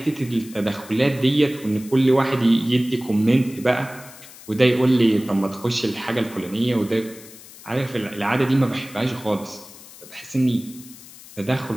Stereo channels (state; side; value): noise; left; hiss, 19 dB below the sound